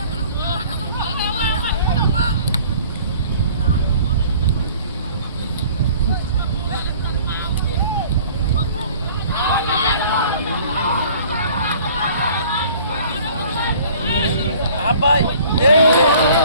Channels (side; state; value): both; inverted; correlation -0.51